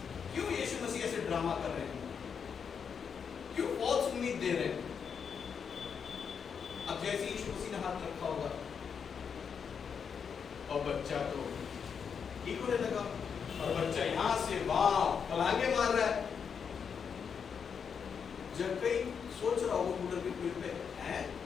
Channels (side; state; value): right; quieter; 6.7 dB